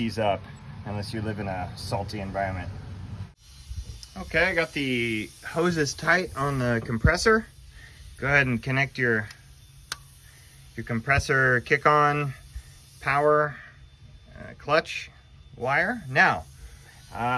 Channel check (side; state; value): both; identical; correlation 1.00